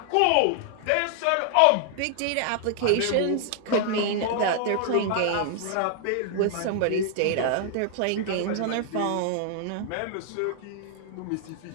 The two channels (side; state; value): both; different; correlation 0.00